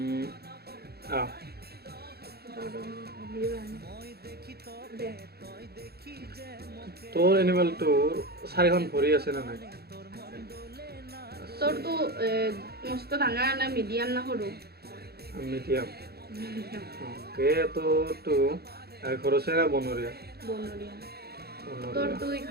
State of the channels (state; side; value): late; left; 0.46 ms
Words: তোৰ এনিমেলটোৰ 4খন ভৰি আছে নে নাই? তোৰটো মস্ত ডাঙৰ না মিডিয়াম না সৰু? মিডিয়াম। অ'কে, তো ঘৰচীয়া না বনৰীয়া? বনৰীয়া। বনৰীয়া। তোৰটো